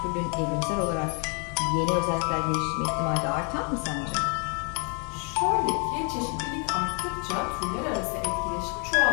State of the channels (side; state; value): right; quieter; 35.0 dB